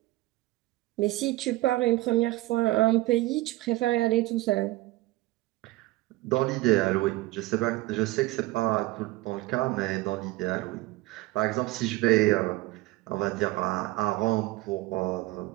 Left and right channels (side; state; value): left; quieter; 19.0 dB